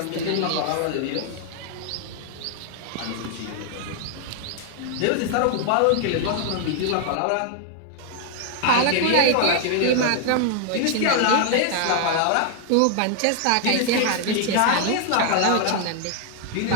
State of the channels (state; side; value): different; both; correlation 0.00